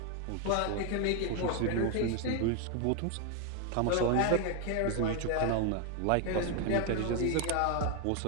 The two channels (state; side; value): different; both; correlation 0.01